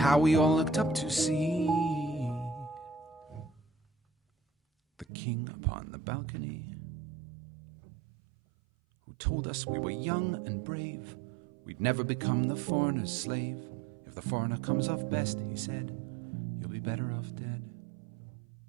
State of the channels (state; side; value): drops out; left; at 5.1 s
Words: we all looked up to see the king upon the balcony, who told us we were young and brave, we'd never become the foreigner's slave. If the foreigner comes off best, he said, you'll be better off dead.